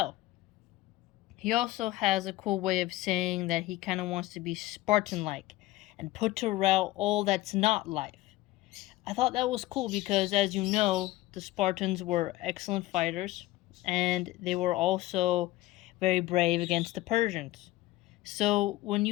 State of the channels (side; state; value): right; quieter; 17.6 dB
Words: He also has a cool way of saying that he kind of wants to be Spartan-like and put to rout all that's not life. I thought that was cool because, as you know, the Spartans were excellent fighters, and they were also very brave against the Persians. So when